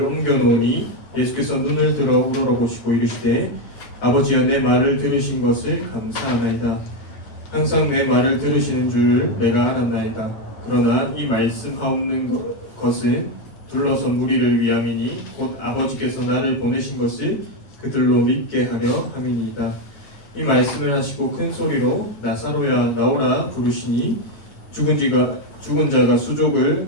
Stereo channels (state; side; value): late; right; 9.2 ms